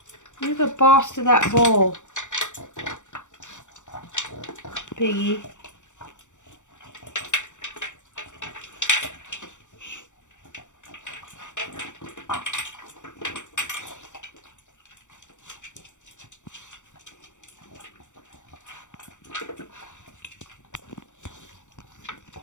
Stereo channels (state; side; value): late; right; 0.85 ms